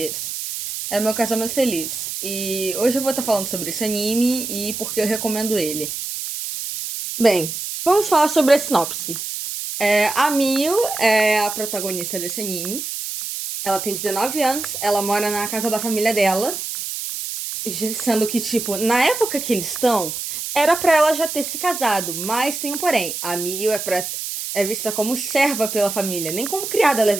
é Meu Casamento Feliz. E hoje eu vou estar falando sobre esse anime e por que eu recomendo ele. Bem, vamos falar sobre a sinopse. A Miyu é a protagonista desse anime. Ela tem 19 anos, ela mora na casa da família dela. Sendo que, tipo, na época que eles estão, era pra ela já ter se casado. Mas tem um porém. A Mio é vista como serva pela família, nem como criada ela é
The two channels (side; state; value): right; noise; hiss, 5 dB below the sound